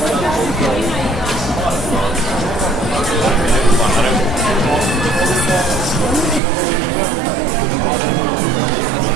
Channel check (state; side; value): drops out; left; at 6.4 s